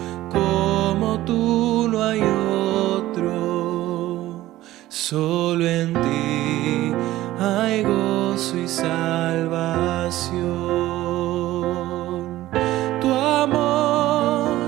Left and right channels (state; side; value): quieter; left; 15.7 dB